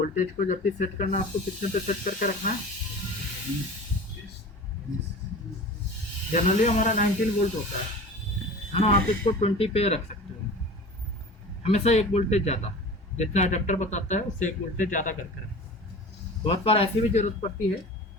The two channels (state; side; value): normal; both; correlation 0.37